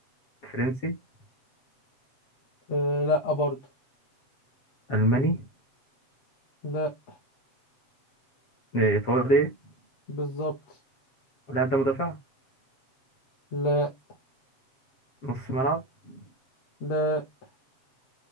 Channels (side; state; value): right; late; 7.5 ms